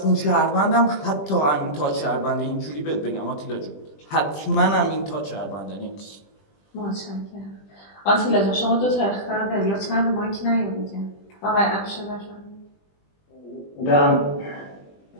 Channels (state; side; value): late; right; 20 ms